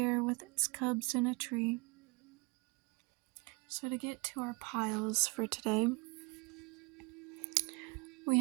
with its cubs in a tree. So to get to our piles for today, we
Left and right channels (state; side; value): quieter; left; 28.1 dB